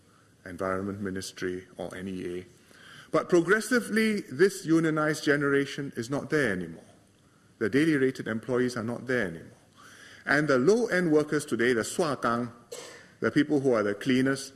Environment Ministry, or NEA. But progressively, this unionized generation is not there anymore. The daily rated employees are not there anymore. And the low-end workers today, the swakang, the people who are the cleaners,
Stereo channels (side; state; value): both; identical; correlation 1.00